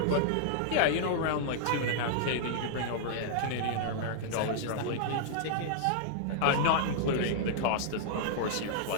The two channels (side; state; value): both; different; correlation -0.01